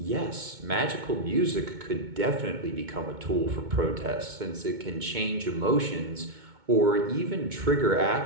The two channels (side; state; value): left; late; 2.2 ms